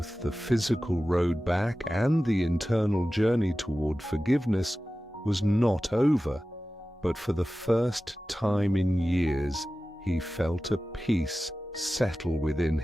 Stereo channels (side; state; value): both; normal; correlation 0.95